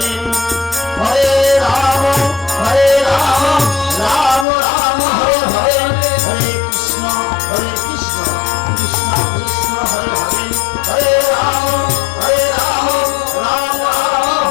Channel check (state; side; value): drops out; right; at 4.5 s